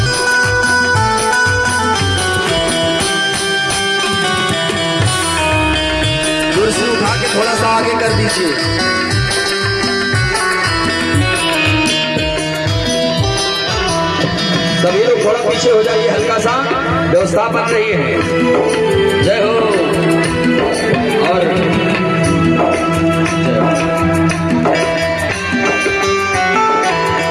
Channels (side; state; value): both; identical; correlation 1.00